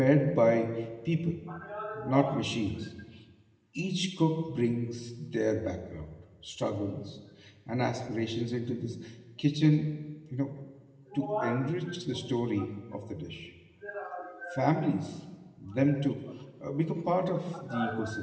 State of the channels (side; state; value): both; identical; correlation 1.00